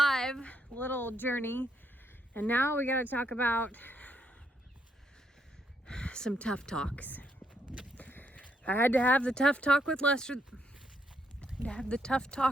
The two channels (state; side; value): normal; both; correlation 0.75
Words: little journey, and now we gotta talk about some tough talks. I had to have the tough talk with Lester.